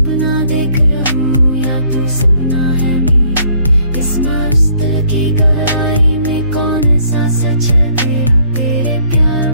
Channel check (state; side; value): inverted; both; correlation -0.62